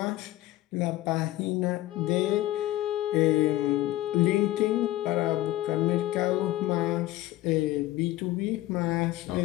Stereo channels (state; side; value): quieter; right; 15.7 dB